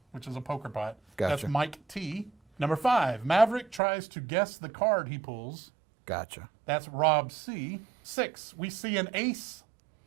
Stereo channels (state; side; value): drops out; left; at 3.8 s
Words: which is a poker pot. Gotcha. That's Mike T. Number 5, Maverick tries to guess the card he pulls. Gotcha. That's Rob C. 6, we see an ace